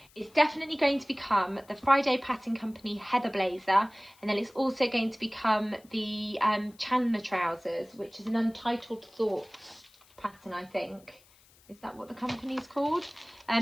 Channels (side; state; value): left; noise; hiss, 28 dB below the sound